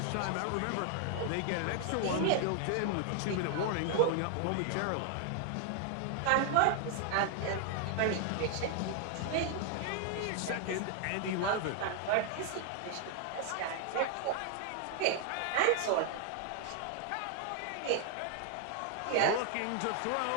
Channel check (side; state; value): both; different; correlation 0.00